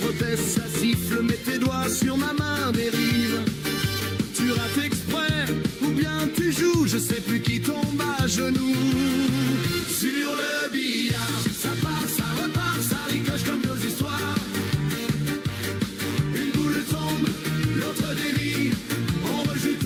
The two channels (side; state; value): both; identical; correlation 1.00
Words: proteste, ça siffle. Mets tes doigts sur ma main, dérive. Tu rates exprès, ou bien tu joues. Je sais plus qui tombe à genoux. Sur le billard, ça part, ça repart, ça ricoche comme nos histoires. Une boule tombe, l'autre dévie. On rejoue